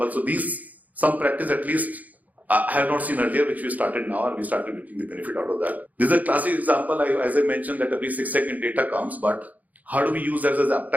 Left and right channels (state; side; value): late; left; 0.078 ms